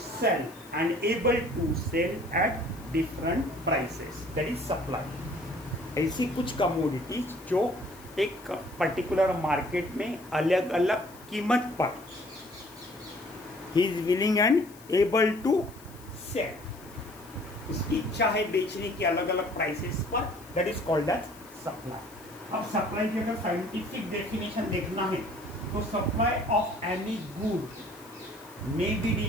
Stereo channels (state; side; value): noise; left; hiss, 22 dB below the sound